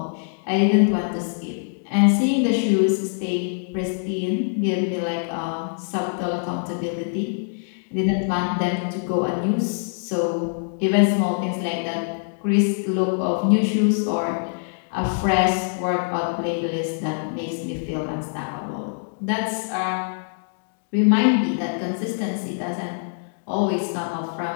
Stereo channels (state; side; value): silent; right; digital silence